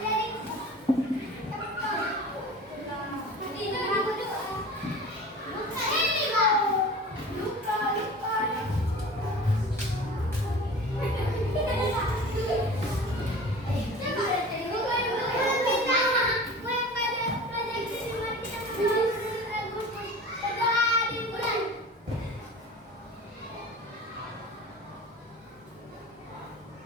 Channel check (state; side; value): normal; both; correlation 0.38